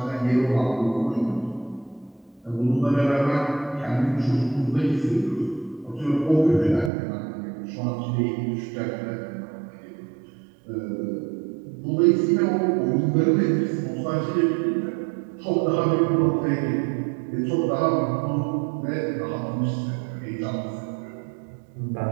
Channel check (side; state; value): left; drops out; at 6.9 s